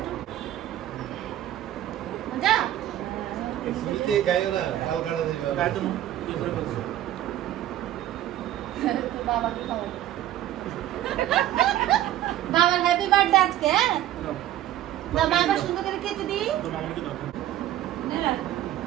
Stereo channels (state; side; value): quieter; left; 13.0 dB